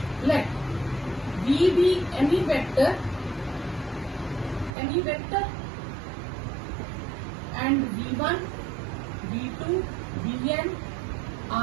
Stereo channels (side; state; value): left; drops out; at 4.7 s